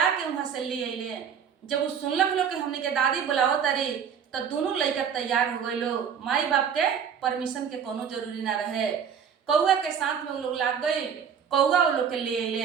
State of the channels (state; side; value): quieter; left; 7.5 dB